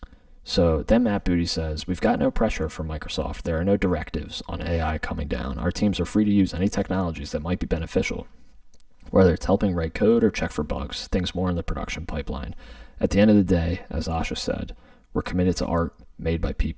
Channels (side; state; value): both; identical; correlation 1.00